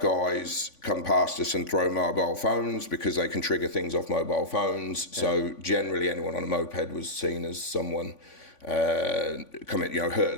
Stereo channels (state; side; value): late; right; 3.5 ms